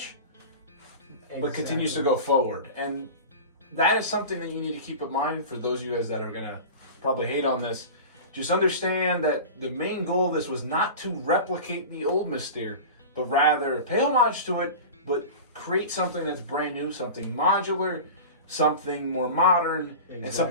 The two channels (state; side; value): inverted; both; correlation -0.32